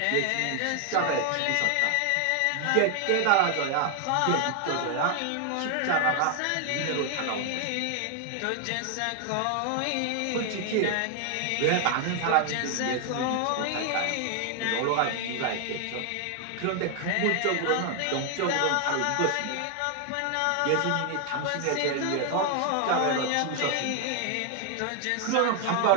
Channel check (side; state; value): both; different; correlation 0.00